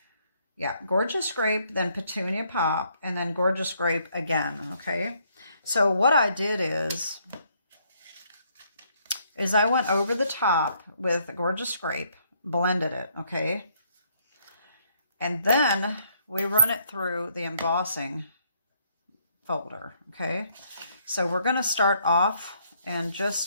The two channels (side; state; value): both; inverted; correlation -0.68